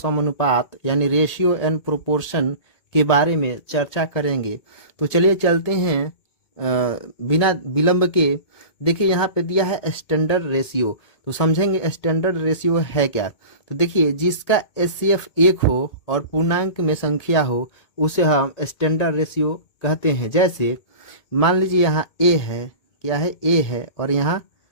यानी रेशियो एंड प्रोपोर्शन के बारे में चर्चा करेंगे। तो चलिए चलते हैं बिना विलंब के। देखिए यहाँ पे दिया है स्टैंडर्ड रेशियो, तो समझेंगे स्टैंडर्ड रेशियो है क्या। तो देखिए, जिसका एचसीएफ 1 हो और पूर्णांक में संख्या हो उसे हम स्टैंडर्ड रेशियो कहते हैं। जैसे मान लीजिए यहाँ ए है, क्या है, ए है और यहाँ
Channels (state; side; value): late; right; 1.8 ms